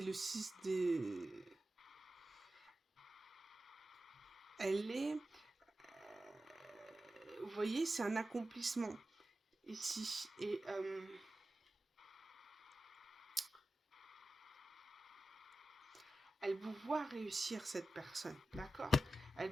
6 des... Elle est... vous voyez, c'est un accomplissement ici. Et... elle vous voit réussir, cette personne, d'accord?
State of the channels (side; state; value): both; normal; correlation 0.93